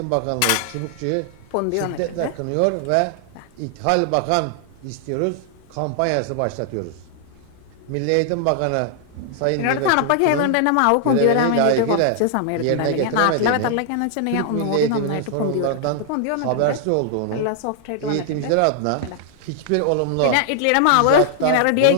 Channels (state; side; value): different; both; correlation 0.00